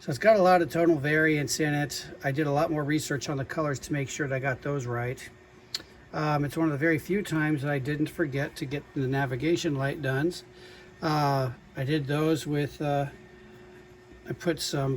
So it's got a lot of tonal variance in it. I did a lot more research on the colors to make sure that I got those right. It's one of the very few times that I didn't forget to get the navigation light done. I did those with I put some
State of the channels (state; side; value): identical; both; correlation 1.00